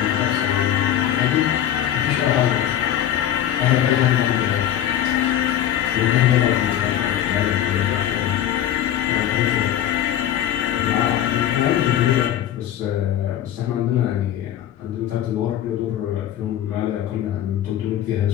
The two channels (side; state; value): right; quieter; 11.1 dB